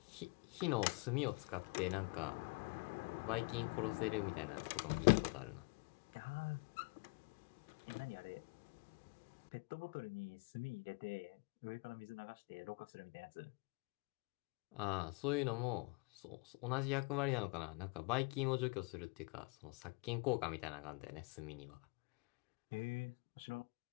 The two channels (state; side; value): quieter; right; 28.7 dB